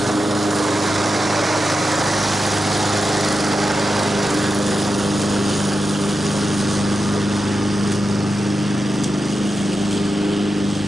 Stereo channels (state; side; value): normal; both; correlation 0.89